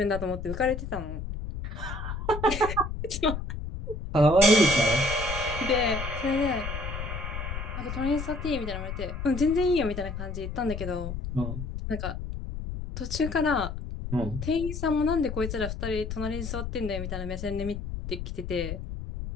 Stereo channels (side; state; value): left; noise; rumble, 6 dB below the sound